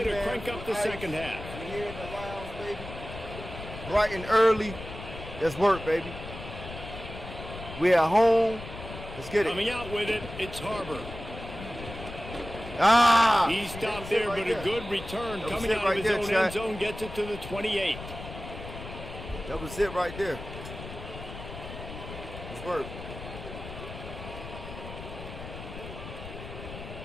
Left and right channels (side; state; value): left; noise; rumble, 11 dB below the sound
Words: to crank up the second half. We're here in the lounge, baby. Bright and early. Let's work, baby. We at home. Let's get it. Coming out with it, it's Harbor. Ah! He stopped there, but a good return coming out of his own end zone, gets it to the 28. That was it right there. Let's work.